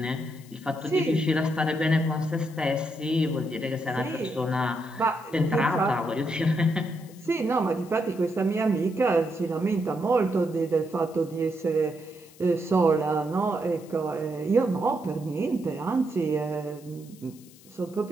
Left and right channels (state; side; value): noise; left; hiss, 24 dB below the sound